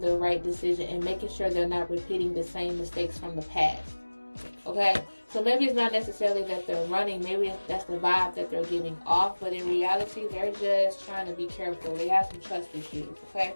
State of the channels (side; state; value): both; inverted; correlation -1.00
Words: right decision and making sure they're not repeating the same mistakes from the past. Okay? So maybe it's not necessarily that they're running. Maybe that's the vibe that they're giving off. But in reality, they're just trying to be careful. They have some trust issues. Okay?